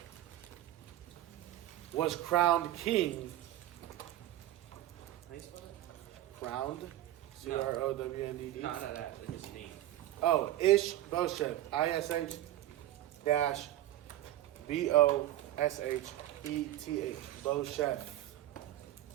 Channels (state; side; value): quieter; left; 14.0 dB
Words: was crowned king. How you spell it? Crowned? Crownd. No, that. His name. Oh, Ishbosheth. ISH-BOSHETH. Bosheth.